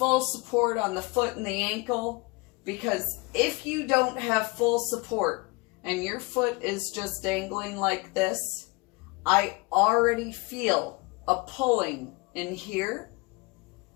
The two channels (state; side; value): quieter; right; 26.4 dB